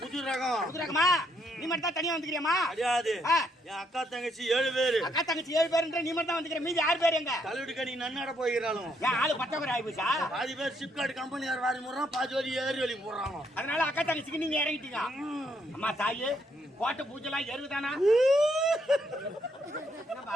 புது ரகம். புது ரகமா? நீ மட்டும் தான் தனியா வந்துக்கிறியாமா? கிடையாது. என் அக்கா தங்கச்சி 7 பேரு. அக்கா தங்கச்சி 7 பேருன்ற நீ மட்டும் தான் வந்துக்கிற. மீதி 6 பேர் எங்க? கல்லூரி கடி நன்னட போகிறாளும். ஏன் ஆளு பத்தவரை ஆயிப்போச்சா? பாதி பேர் சிப்காட் கம்பெனியார் வாரி முறான், பாதி வரி ஏறி வலி போடுறாங்க. அதனால அக்கா தங்கச்சிக்கு நீங்க இறங்கிட்டீங்க. அம்மா தாயே கோட்டை பூஜைலாம் எருவுதானா?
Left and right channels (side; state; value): both; normal; correlation 0.73